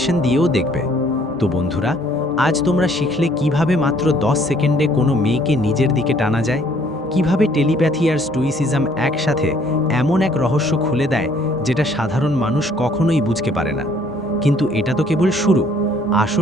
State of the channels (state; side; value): normal; both; correlation 0.61